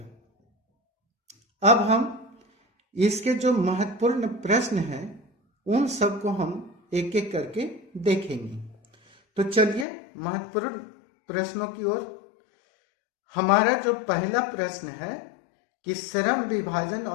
अब हम इसके जो महत्वपूर्ण प्रश्न हैं उन सबको हम एक एक करके देखेंगे। तो चलिए महत्वपूर्ण प्रश्नों की ओर। हमारा जो पहला प्रश्न है कि श्रम विभाजन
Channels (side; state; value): right; drops out; at 9.9 s